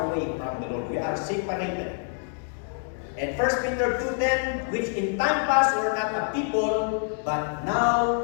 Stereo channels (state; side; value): silent; right; 58 dB below the other